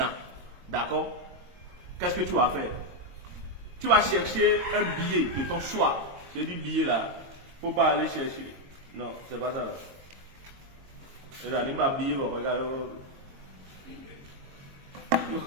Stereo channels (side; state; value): left; late; 22 ms